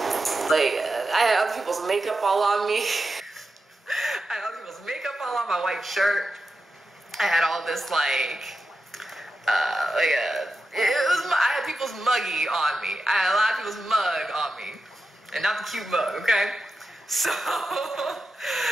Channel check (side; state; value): both; normal; correlation 0.90